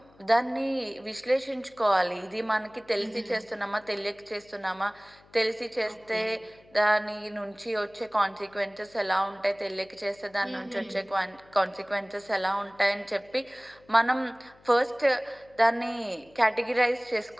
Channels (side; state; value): left; noise; hum, 28 dB below the sound